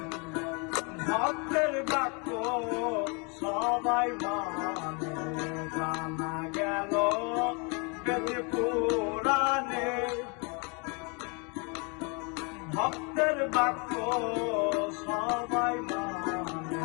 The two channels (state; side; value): quieter; right; 32.8 dB